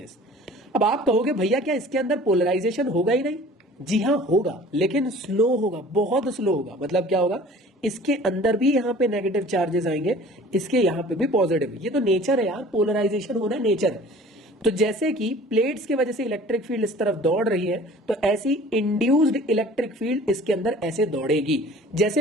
अब आप कहोगे भैया क्या इसके अंदर पोलराइजेशन होगा ही नहीं? जी हाँ होगा, लेकिन स्लो होगा, बहुत स्लो होगा। मतलब क्या होगा, इसके अंदर भी यहां पे नेगेटिव चार्जेस आएंगे, इसके यहां पे भी पॉजिटिव। ये तो नेचर है यार, पोलराइजेशन होना नेचर है। तो जैसे कि प्लेट्स की वजह से इलेक्ट्रिक फील्ड इस तरफ दौड़ रही है, तो ऐसी इंड्यूस्ड इलेक्ट्रिक फील्ड इसके अंदर ऐसे दौड़ेगी।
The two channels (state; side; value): normal; both; correlation 0.47